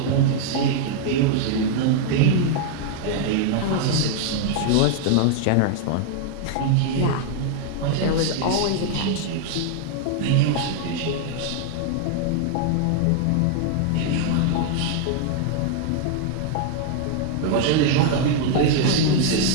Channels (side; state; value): both; different; correlation 0.00